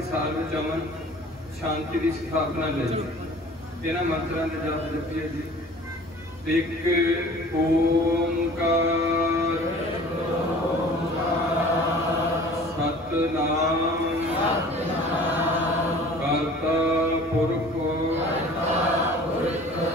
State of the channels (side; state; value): both; normal; correlation 0.46